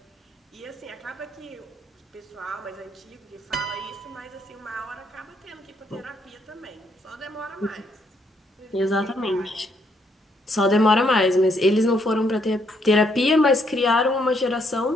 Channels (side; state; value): both; normal; correlation 0.72